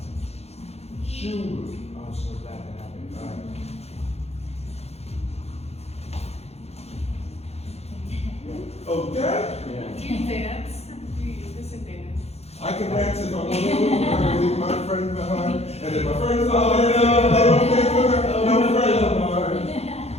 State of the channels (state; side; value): late; right; 0.30 ms